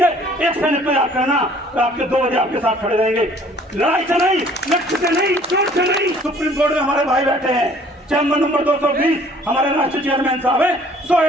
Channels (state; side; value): normal; both; correlation 0.55